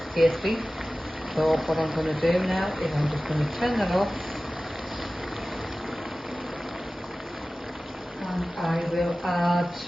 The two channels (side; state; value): both; normal; correlation 0.96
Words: tasty. So what I'm going to do now is I'm just going to turn that off, and I will add